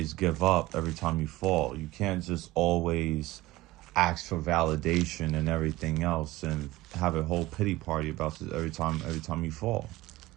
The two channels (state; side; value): quieter; left; 18.3 dB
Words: give up every time you fall. You can't just always ask for validation and everything else, and have a whole pity party about it every time you fall,